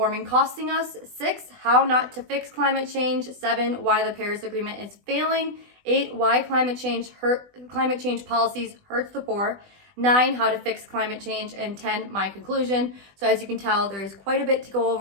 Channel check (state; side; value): late; left; 20 ms